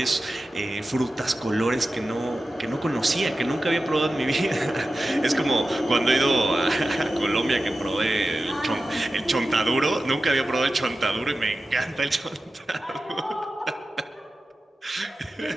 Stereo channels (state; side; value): normal; both; correlation 0.94